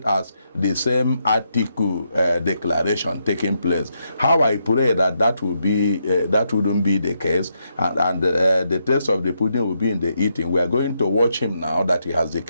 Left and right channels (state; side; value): inverted; both; correlation -0.80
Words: as the same Atiku declaration taking place. How I pray that will be that wouldn't be the case, and the taste of the pudding will be in the eating. We are going to watch him now that he has